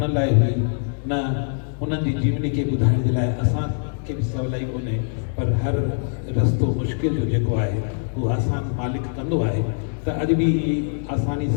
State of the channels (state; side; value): silent; right; digital silence